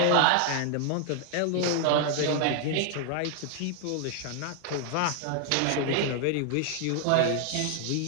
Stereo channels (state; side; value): different; both; correlation 0.00